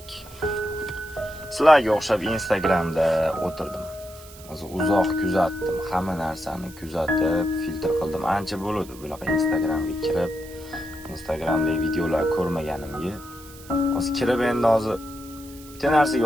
sizlarga o'xshab Instagramda o'tirdim. Uzoq kuzatdim, hamma narsani kuzatib, filtr qildim. Ancha bo'ldi bunaqa Instagramga kirib, Instagramdagi videolar ko'rmaganimga. Hozir kirib endi hozir bitta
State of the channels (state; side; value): noise; right; hiss, 20 dB below the sound